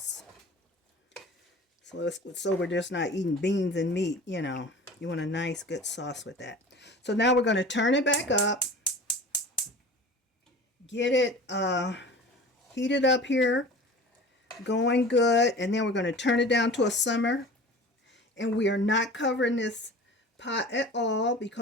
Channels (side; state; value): both; normal; correlation 0.39